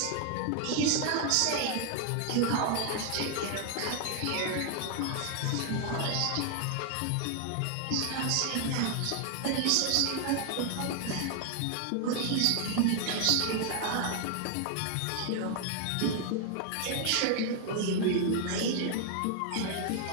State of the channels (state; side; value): different; both; correlation 0.00